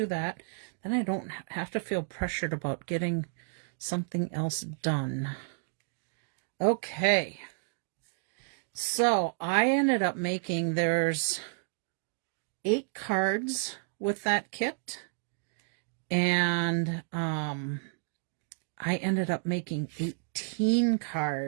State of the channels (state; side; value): silent; left; digital silence